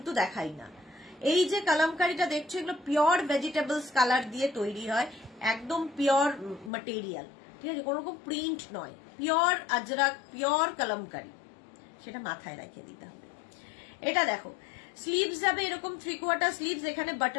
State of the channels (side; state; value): right; drops out; at 6.7 s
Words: দেখাই না। এই যে কলমকারিটা দেখছো, এগুলো পিওর ভেজিটেবলস কালার দিয়ে তৈরি হয়, একদম পিওর ম্যাটেরিয়াল, ঠিক আছে, কোনো রকম প্রিন্ট নয়, পিওর আজরাক, পিওর কলমকারি, সেটা মাথায় রেখে দিতে হবে। এটা দেখো, স্লিভস যাবে এরকম 3/4 স্লিভস, এখানে